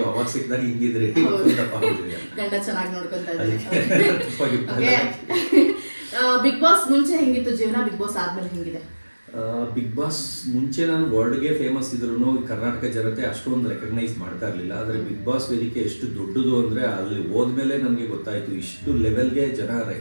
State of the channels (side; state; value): both; inverted; correlation -1.00